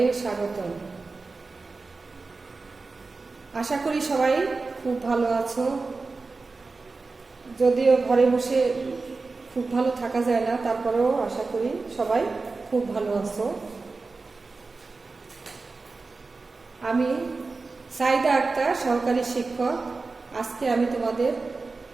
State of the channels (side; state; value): left; quieter; 3.9 dB